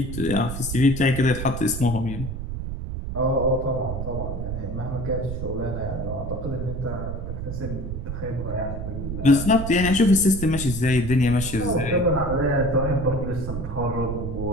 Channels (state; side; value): noise; right; rumble, 5 dB below the sound